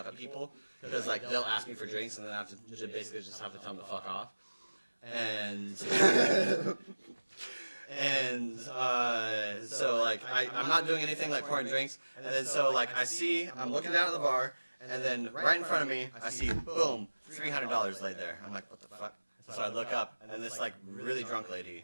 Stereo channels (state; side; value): inverted; both; correlation -1.00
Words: at people because like they'll ask me for drinks and then I have to basically just have to tell them to fuck off. And so like I'm not doing anything like pouring drinks. And then so like I'm looking down at the bar and then right in front of me I see boom $300 laid there. I'm like what the fuck? So I look up and then this like really drunk